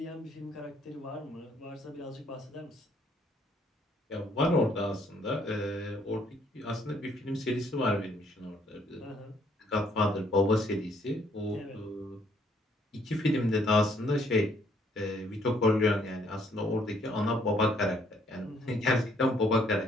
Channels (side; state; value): both; normal; correlation 0.67